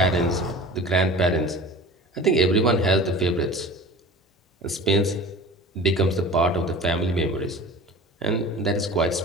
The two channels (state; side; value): normal; both; correlation 0.38